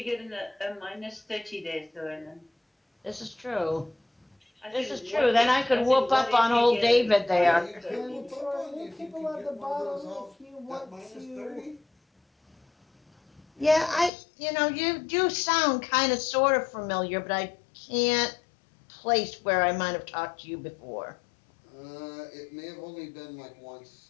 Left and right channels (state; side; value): drops out; right; at 14.1 s